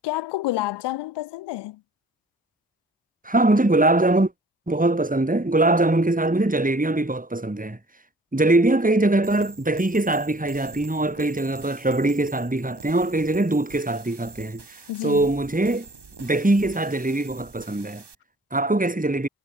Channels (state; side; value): normal; both; correlation 0.52